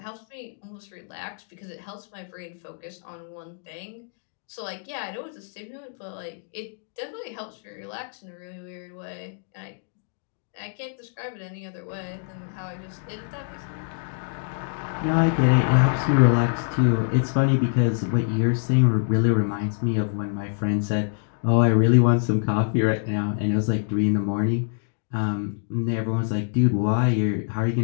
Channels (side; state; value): right; silent; digital silence